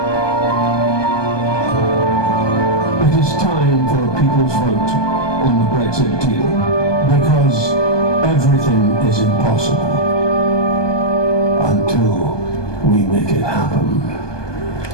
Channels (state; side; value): late; right; 1.2 ms